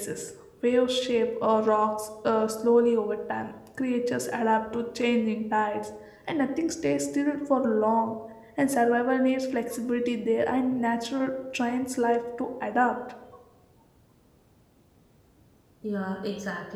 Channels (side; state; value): both; identical; correlation 1.00